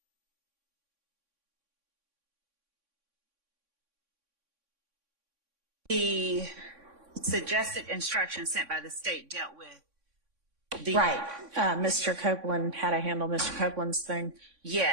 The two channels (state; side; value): late; left; 3.6 ms